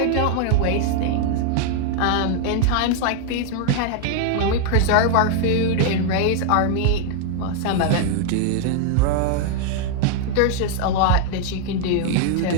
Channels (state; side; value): different; both; correlation 0.00